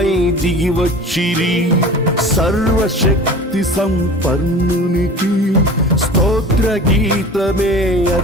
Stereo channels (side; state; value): both; normal; correlation 0.39